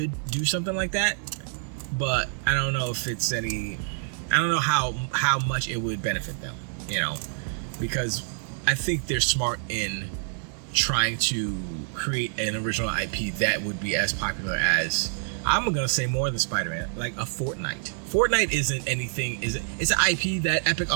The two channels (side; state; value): left; silent; digital silence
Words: do something like that, but I don't know if it's any... I don't know how much it would benefit them, you know, because I think they're smart in trying to create an original IP that would be as popular as, I'm gonna say, more than Spider-Man, like a Fortnite. Fortnite isn't anything, it's an IP that Epic